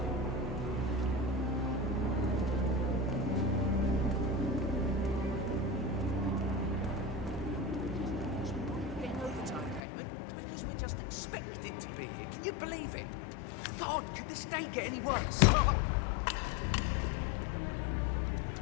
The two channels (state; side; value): drops out; right; at 9.8 s